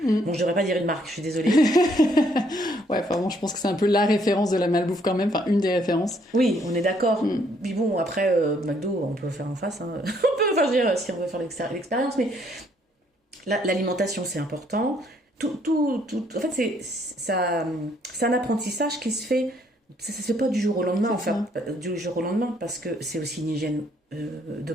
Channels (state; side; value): normal; both; correlation 0.68